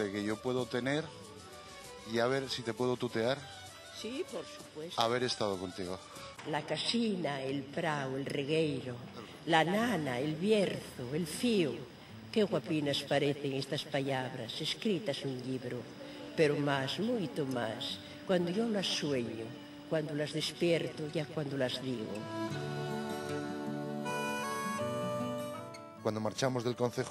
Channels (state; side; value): identical; both; correlation 1.00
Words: que yo puedo tener, y a ver si te puedo tutear, Sí, por supuesto. haber estado contigo. La casina, el prau, el regueiro, la nana, el bierzo, el fío. Qué guapinas parecen estas palabras escritas en un libro, pero más, mucho más, cuando yo las sueño, cuando las despierto, ya cuando las digo. Cuando marchamos del